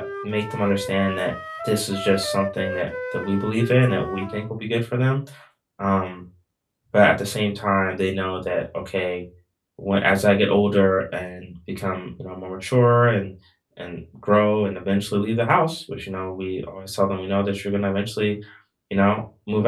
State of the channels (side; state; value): both; identical; correlation 1.00